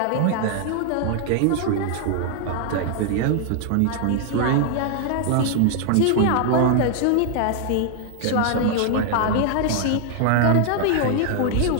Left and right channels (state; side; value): different; both; correlation 0.00